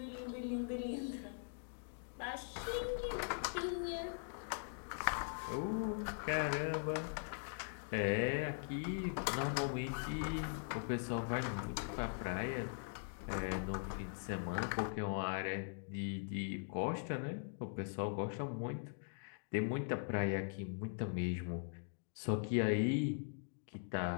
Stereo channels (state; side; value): silent; right; digital silence